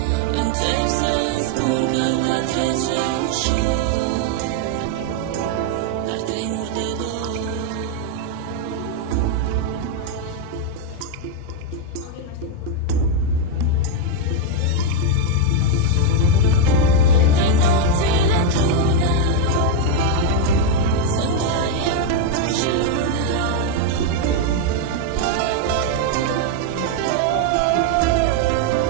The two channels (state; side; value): different; both; correlation 0.01